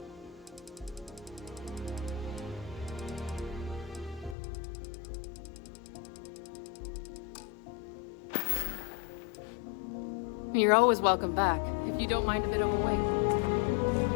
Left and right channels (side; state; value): right; drops out; at 4.4 s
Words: You're always welcome back, if you don't mind a bit of a wait.